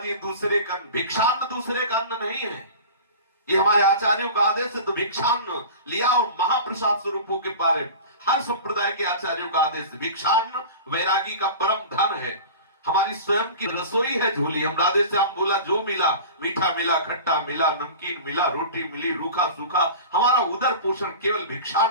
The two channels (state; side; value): inverted; both; correlation -0.36